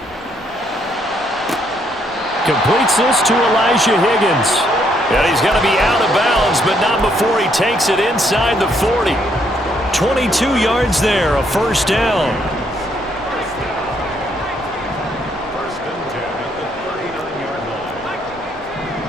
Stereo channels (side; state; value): both; normal; correlation 0.71